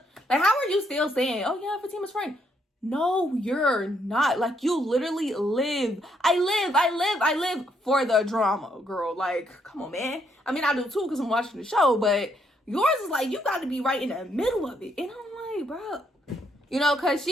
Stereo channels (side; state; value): both; normal; correlation 0.73